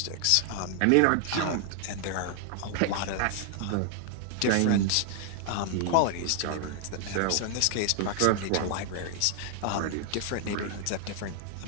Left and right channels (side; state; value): both; different; correlation 0.00